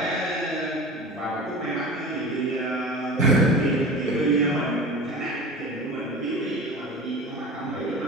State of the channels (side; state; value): both; normal; correlation 0.34